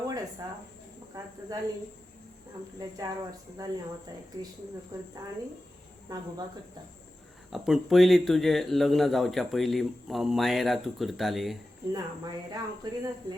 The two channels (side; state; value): both; normal; correlation 0.93